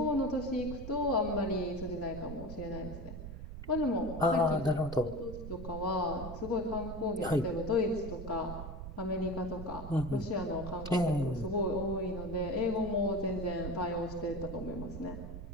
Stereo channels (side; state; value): right; noise; rumble, 9 dB below the sound